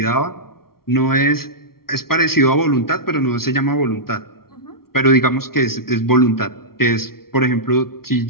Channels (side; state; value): right; late; 0.94 ms